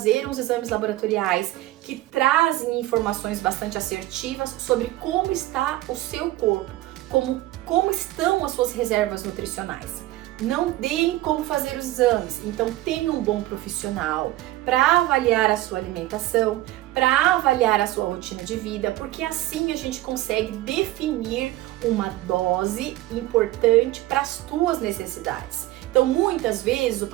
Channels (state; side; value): quieter; left; 16.6 dB